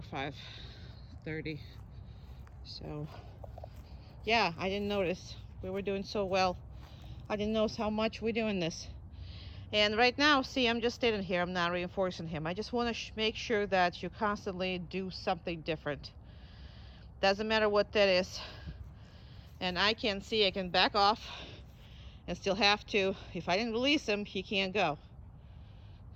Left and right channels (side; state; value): both; identical; correlation 1.00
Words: 5:30. So, yeah, I didn't notice. We were doing so well. I didn't notice how much we're doing this. And right now, see, I'm just standing here. I'm not reinforcing him. I just want to make sure that you constantly do something different. Doesn't matter what that is. And I can see I can back off and still have to. If I didn't release him, he can't go.